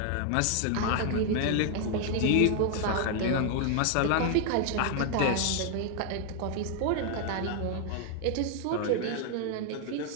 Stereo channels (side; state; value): both; different; correlation 0.00